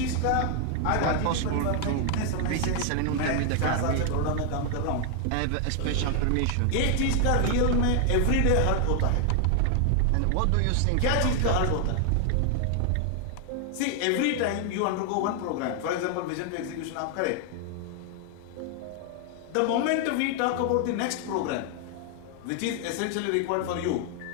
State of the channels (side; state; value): both; different; correlation 0.00